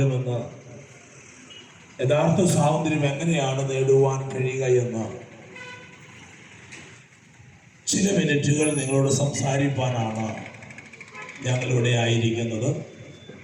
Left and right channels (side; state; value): both; identical; correlation 1.00